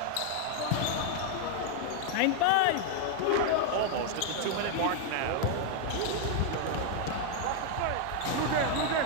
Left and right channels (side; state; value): both; different; correlation 0.00